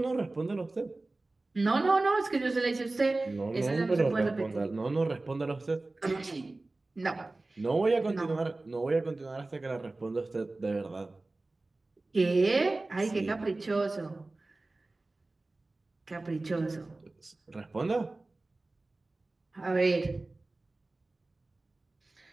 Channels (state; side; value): quieter; left; 3.1 dB